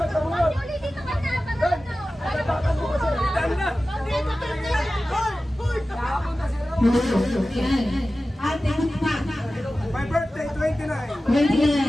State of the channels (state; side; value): normal; both; correlation 0.95